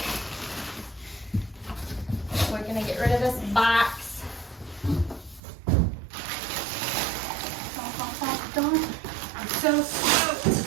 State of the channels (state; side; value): drops out; left; at 5.4 s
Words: We're gonna get rid of this box. I'm so stoked.